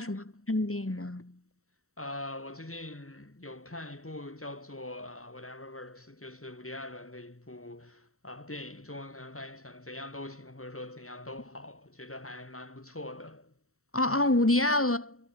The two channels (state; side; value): late; right; 0.64 ms